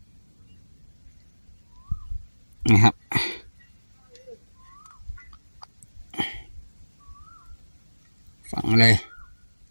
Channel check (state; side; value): inverted; both; correlation -1.00